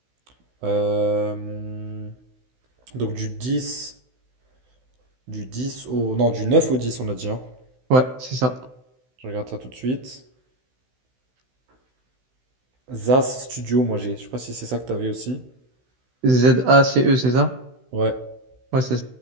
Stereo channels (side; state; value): left; late; 16 ms